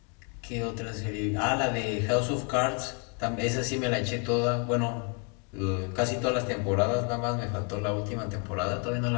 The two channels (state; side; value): quieter; right; 35.2 dB